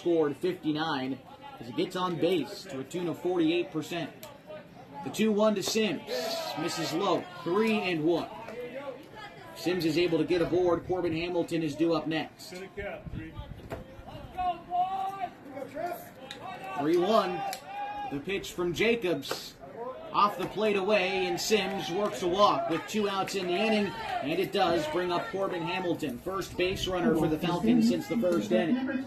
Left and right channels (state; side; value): identical; both; correlation 1.00